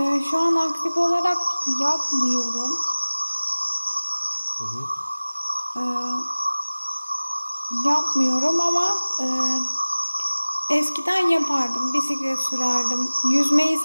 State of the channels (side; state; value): both; inverted; correlation -1.00